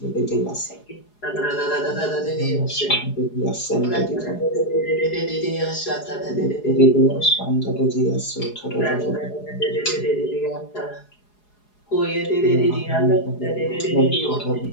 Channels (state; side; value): late; right; 4.8 ms